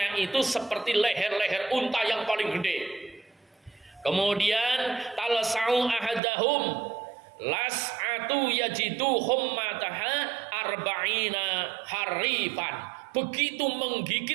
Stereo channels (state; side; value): drops out; left; at 6.2 s